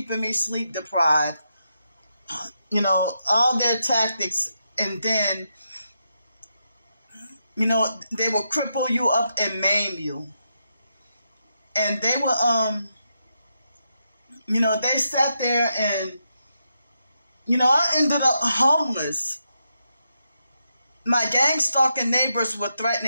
me sleep deprived. All their tactics. And then, they will cripple you up and maim you. And they would, they sat there and, I ended up homeless. My gang stalking neighbors were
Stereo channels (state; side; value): inverted; both; correlation -0.83